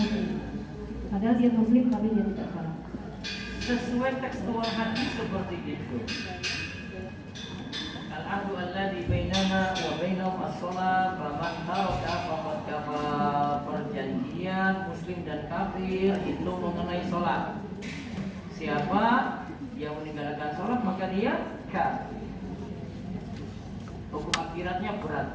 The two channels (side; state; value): both; identical; correlation 1.00